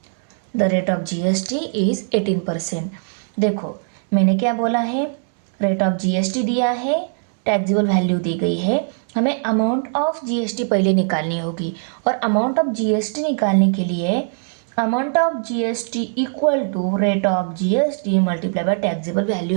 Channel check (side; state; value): left; silent; 65 dB below the other